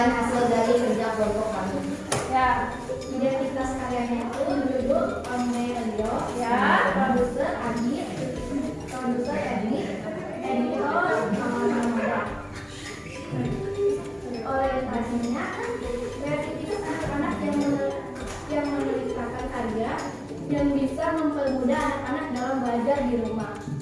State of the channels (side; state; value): both; identical; correlation 1.00